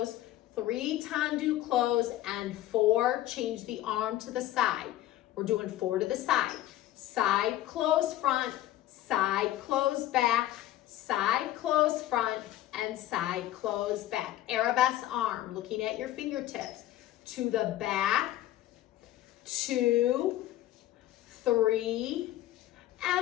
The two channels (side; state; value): right; quieter; 14.2 dB